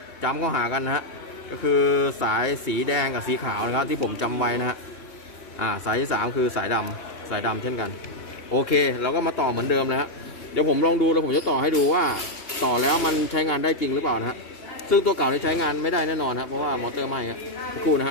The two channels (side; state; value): right; late; 2.8 ms